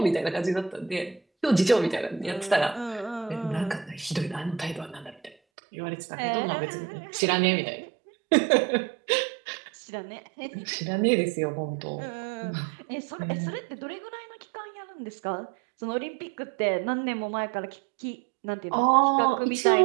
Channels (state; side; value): drops out; left; at 5.4 s